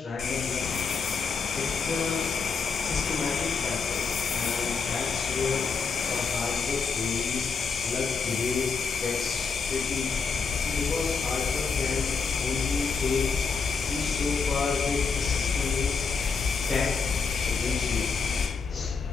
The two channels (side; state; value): right; quieter; 5.3 dB